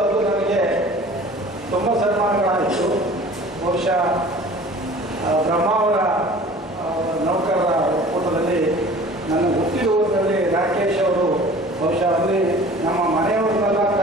ನನಗೆ ತುಂಬ ಸನ್ಮಾನಗಳಾಯಿತು. ಬಹುಶಃ ಬ್ರಹ್ಮಾವರ ನೌಕರರ ಒಕ್ಕೂಟದಲ್ಲಿ ನನ್ನ ಹುಟ್ಟಿರುವುದರಲ್ಲಿ ರಾಕೇಶ್ ಅವರು ಬಹುಶಃ ಅಲ್ಲಿ ನಮ್ಮ ಮನೆಯವರನ್ನೆಲ್ಲ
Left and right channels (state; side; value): normal; both; correlation 0.46